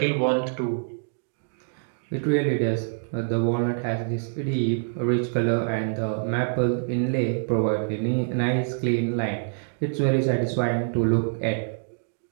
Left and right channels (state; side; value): silent; left; digital silence